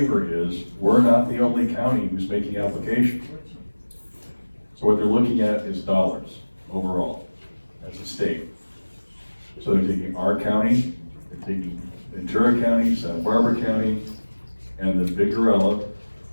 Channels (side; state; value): both; inverted; correlation -1.00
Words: is we're not the only county who's making applications. So what they're looking at is dollars overall as a state. So they're taking our county, they're taking Ventura County, Santa Barbara County, and the big gorilla,